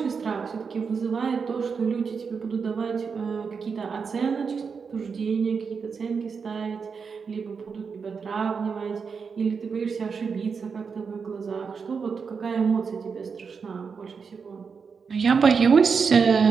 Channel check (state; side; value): quieter; left; 5.6 dB